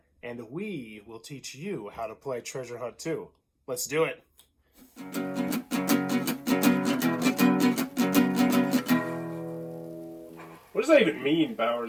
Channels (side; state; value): both; identical; correlation 1.00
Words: And we will teach you how to play Treasure Hunt too. Let's do it. What does that even mean,